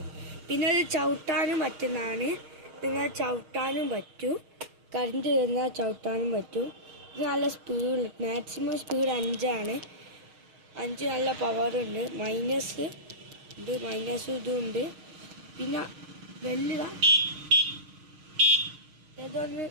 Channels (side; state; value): left; late; 6.4 ms